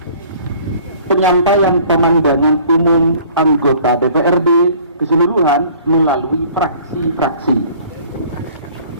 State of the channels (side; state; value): both; inverted; correlation -0.52